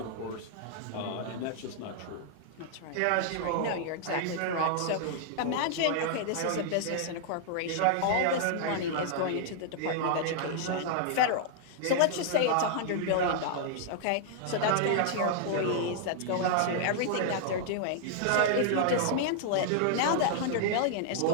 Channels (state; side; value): different; both; correlation -0.01